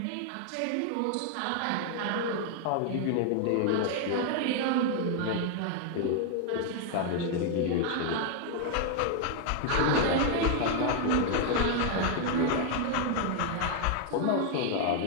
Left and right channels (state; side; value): different; both; correlation 0.00